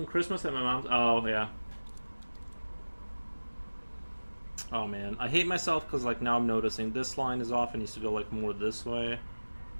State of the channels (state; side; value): inverted; both; correlation -1.00